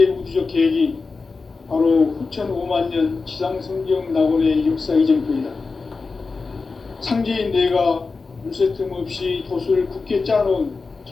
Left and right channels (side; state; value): right; quieter; 4.2 dB